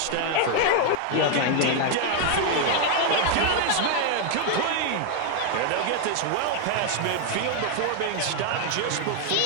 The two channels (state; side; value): different; both; correlation 0.00